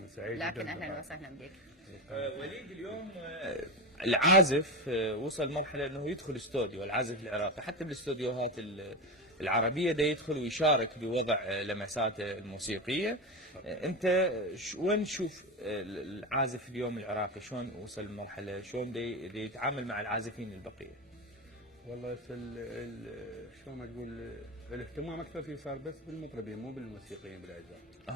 لكن أهلا وسهلا بك. وليد، اليوم العازف وصل مرحلة أنه يدخل استوديو، العازف العراقي حتى بالاستوديوهات العربية ده يدخل ويشارك بوضع لمساته الموسيقية. أنت وين تشوف العازف اليوم العراقي؟ شلون وصل المرحلة؟ شلون دي يتعامل مع العازفين البقية؟ والله شلون ما تقول، الاهتمام اكثر فيه صار بس بالمطربين مو بالموسيقيين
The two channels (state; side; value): normal; both; correlation 0.19